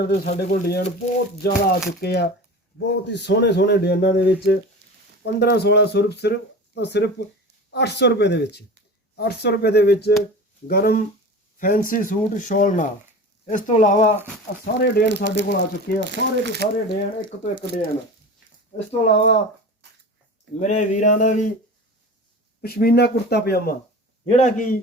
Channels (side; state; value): both; normal; correlation 0.34